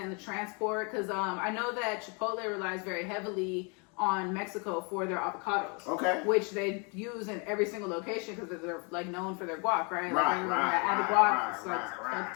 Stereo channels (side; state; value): right; quieter; 33.9 dB